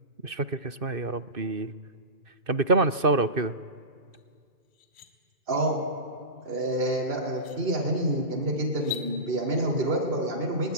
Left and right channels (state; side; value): late; left; 2.6 ms